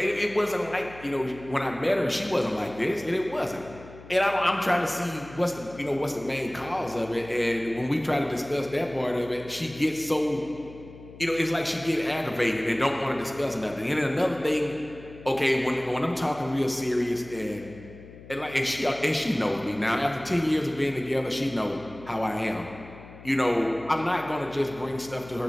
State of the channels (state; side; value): noise; left; hum, 18 dB below the sound